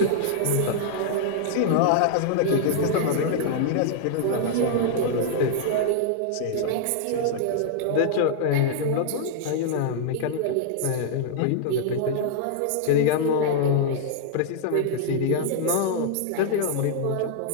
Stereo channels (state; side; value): different; both; correlation -0.01